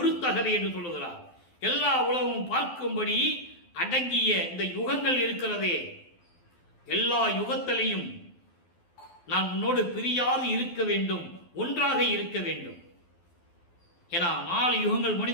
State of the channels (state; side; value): late; right; 12 ms